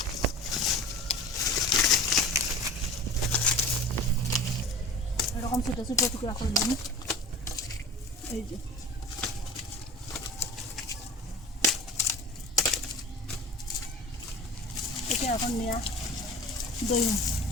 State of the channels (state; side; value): normal; both; correlation 0.36